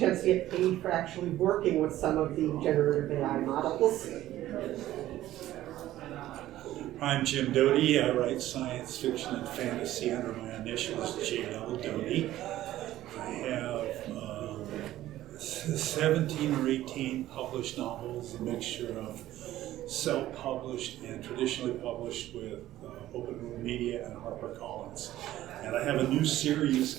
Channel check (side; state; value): left; quieter; 14.3 dB